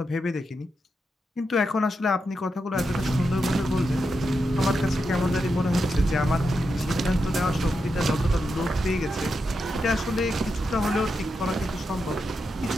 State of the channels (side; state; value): both; normal; correlation 0.86